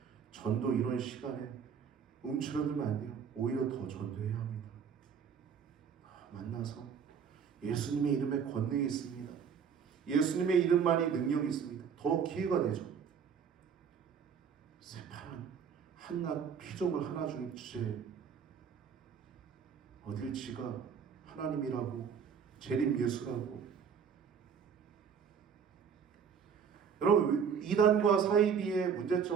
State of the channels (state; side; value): quieter; left; 7.0 dB